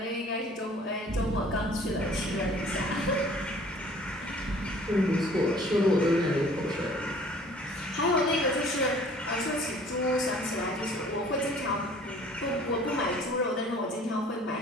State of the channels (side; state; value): both; normal; correlation 0.52